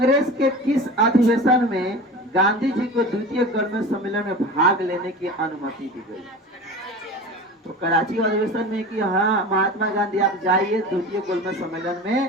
के किस अधिवेशन में गांधी जी को द्वितीय गोलमेज सम्मेलन में भाग लेने की अनुमति दी गई? तो कराची अधिवेशन में कि हाँ महात्मा गांधी आप जाइए द्वितीय गोलमेज सम्मेलन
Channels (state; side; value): normal; both; correlation 0.34